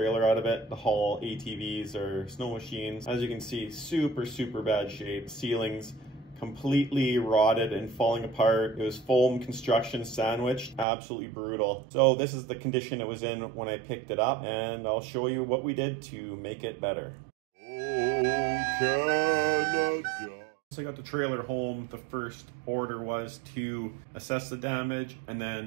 out of it to haul ATVs or snow machines. As you can see, super bad shape. Ceilings completely rotted and falling apart. It was foam construction sandwiched, absolutely brutal. So this is the condition it was in when I picked it up, and I'll show you what we did to make it better. Oh, Canada. So I got the trailer home. The first order was to assess the damage and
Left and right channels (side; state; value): left; drops out; at 10.9 s